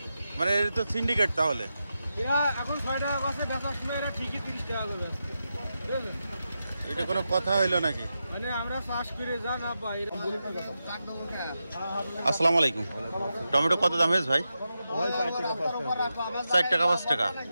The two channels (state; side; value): inverted; both; correlation -0.89